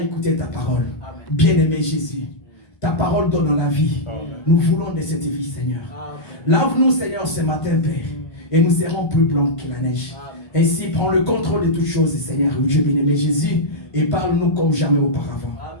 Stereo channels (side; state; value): right; late; 1.5 ms